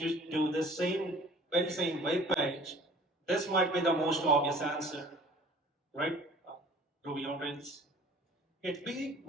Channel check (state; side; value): normal; both; correlation 0.49